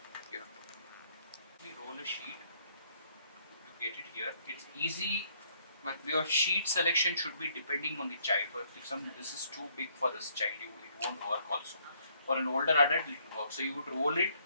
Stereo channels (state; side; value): inverted; both; correlation -0.67